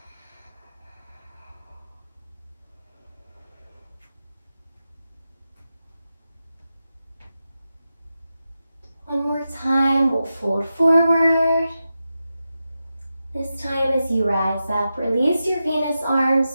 One more time, we'll fold forward, This time as you rise up, release your Venus arms,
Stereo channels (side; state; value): both; inverted; correlation -0.91